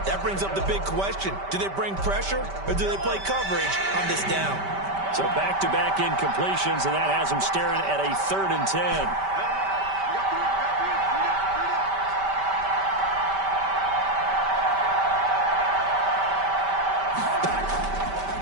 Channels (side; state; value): left; late; 5.1 ms